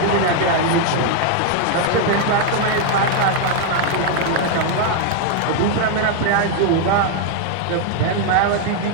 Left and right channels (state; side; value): different; both; correlation 0.00